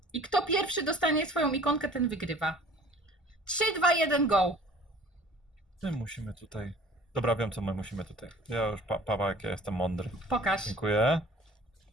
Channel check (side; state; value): both; normal; correlation 0.49